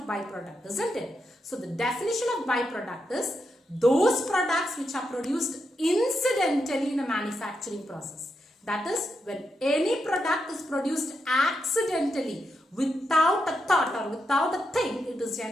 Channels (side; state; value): both; normal; correlation 0.84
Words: byproduct, isn't it? So the definition of byproduct is those products which are produced incidentally in a manufacturing process. That is, when any product is produced accidentally without a thought or without a thing, it is